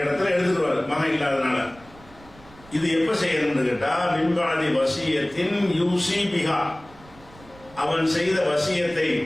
இடத்துல எடுத்துருவாரு, மகன் இல்லாதனால. இது எப்ப செய்யணும்னு கேட்டா, மின்பாதி வசியத்தின் யூசி பிகா, அவன் செய்த வசியத்தை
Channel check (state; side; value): noise; right; rumble, 23 dB below the sound